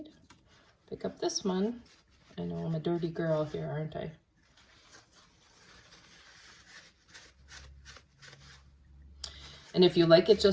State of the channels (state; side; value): identical; both; correlation 1.00